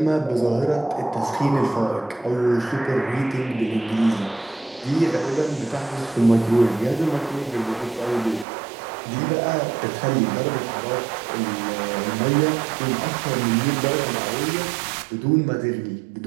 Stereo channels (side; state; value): left; drops out; at 8.5 s